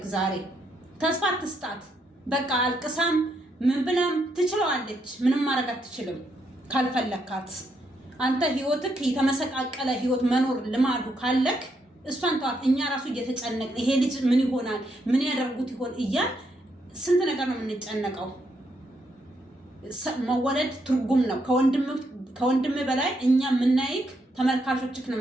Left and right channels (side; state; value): both; normal; correlation 0.77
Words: ዛሬ ተስፋ አትስጣት። በቃ አልቅሳም ምን ብላም ትችለዋለች። ምንም ማድረግ አትችልም ካልፈለካት። አንተ ህይወትክ የተመሰቃቀለ ህይወት መኖር ልማዱ ካለክ እሷን ተዋት። እኛ ራሱ እየተጨነቅን ይሄ ልጅ ምን ይሆናል ምን ያደርጉት ይሆን እያል ስንት ነገር ነው የምንጨነቀው። መወለድ ትርጉም ነው ከወንድም በላይ እኛ የምናይክ ተመልካቾችክ ነው